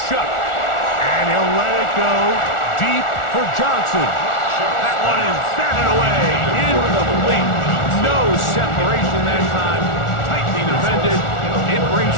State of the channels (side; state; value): right; late; 1.4 ms